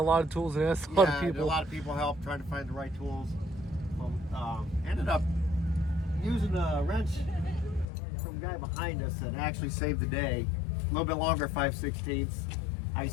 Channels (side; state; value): right; drops out; at 7.9 s